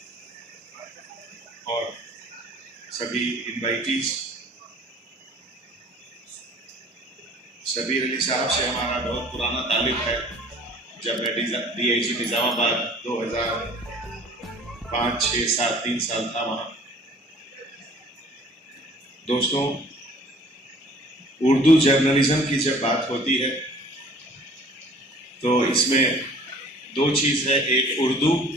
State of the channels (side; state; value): both; normal; correlation 0.50